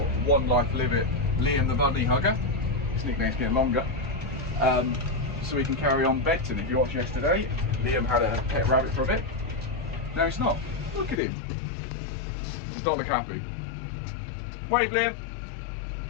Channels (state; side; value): drops out; right; at 11.2 s